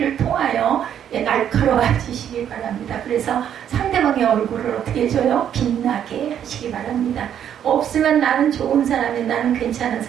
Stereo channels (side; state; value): left; quieter; 9.5 dB